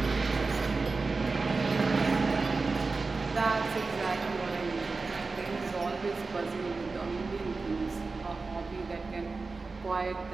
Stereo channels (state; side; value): quieter; left; 4.0 dB